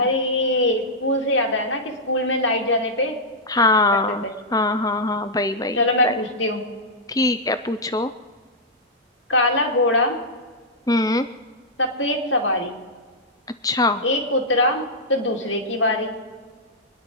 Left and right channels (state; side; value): normal; both; correlation -0.08